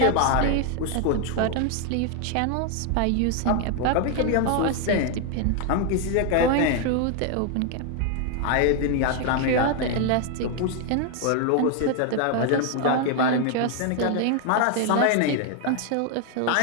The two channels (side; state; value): both; different; correlation 0.00